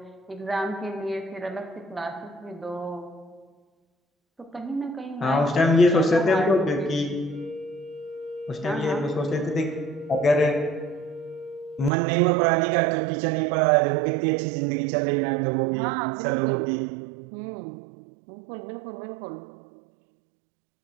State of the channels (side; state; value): left; drops out; at 11.9 s